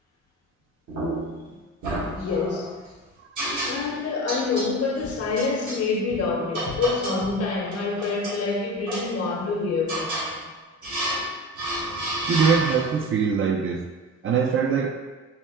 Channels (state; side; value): normal; both; correlation 0.31